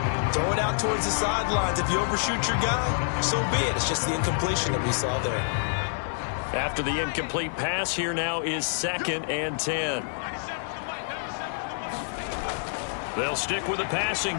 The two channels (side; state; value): right; silent; digital silence